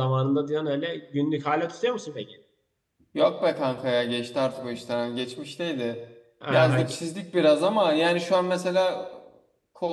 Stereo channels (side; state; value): both; identical; correlation 1.00